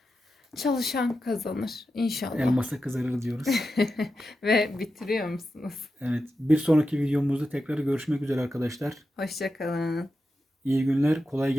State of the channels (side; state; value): both; normal; correlation 0.90